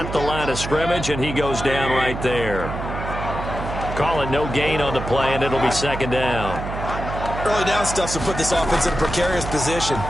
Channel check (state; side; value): noise; right; hum, 7 dB below the sound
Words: the line of scrimmage, and he goes down right there. Call it no gain on the play, and it'll be 2nd down. Early down stuff to put this offense in a precarious position.